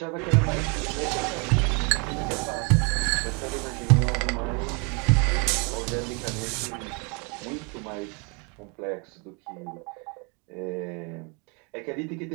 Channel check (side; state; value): left; quieter; 33.1 dB